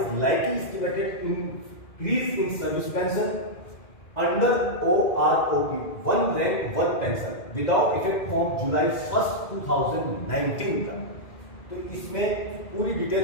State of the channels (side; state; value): right; late; 2.1 ms